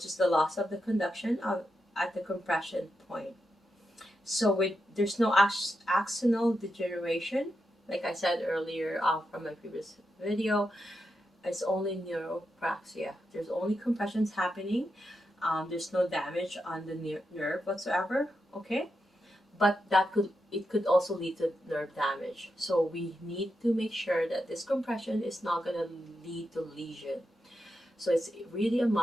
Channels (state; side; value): normal; both; correlation 0.86